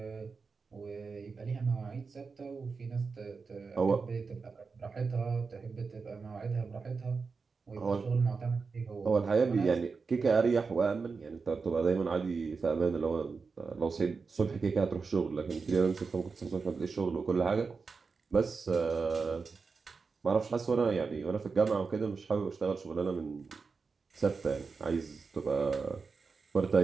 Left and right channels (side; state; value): left; quieter; 4.8 dB